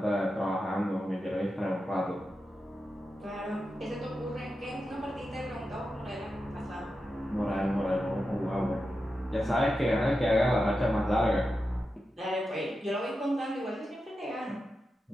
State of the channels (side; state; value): both; normal; correlation 0.90